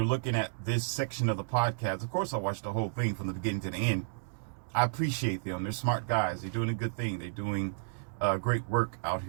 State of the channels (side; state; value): left; silent; digital silence